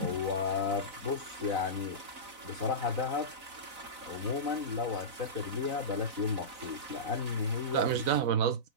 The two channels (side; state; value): left; late; 4.0 ms